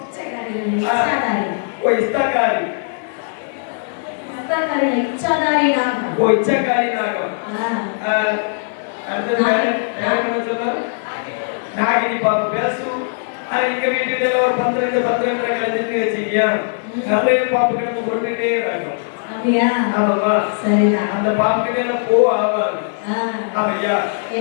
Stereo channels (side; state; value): right; silent; 67 dB below the other